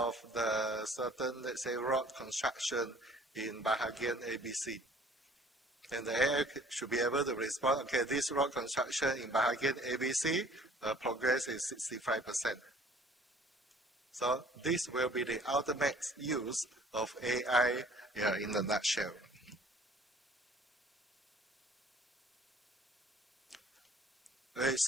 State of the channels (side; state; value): both; normal; correlation 0.53